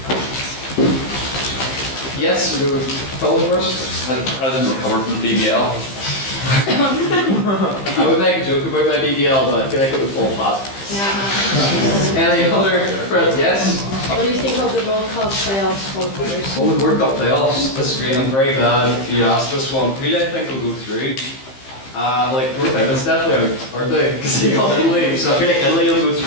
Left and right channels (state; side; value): late; right; 15 ms